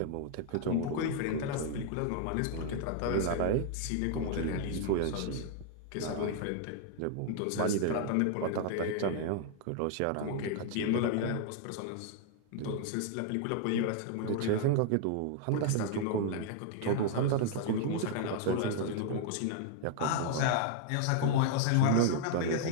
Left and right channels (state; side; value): different; both; correlation 0.00